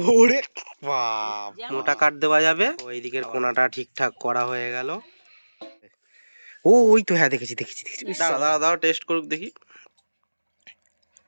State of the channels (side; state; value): both; inverted; correlation -1.00